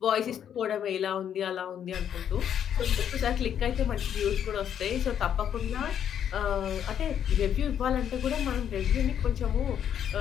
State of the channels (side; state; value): right; quieter; 9.2 dB